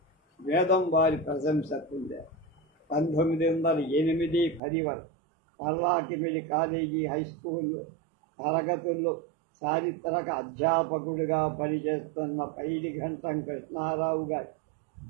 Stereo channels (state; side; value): drops out; left; at 4.6 s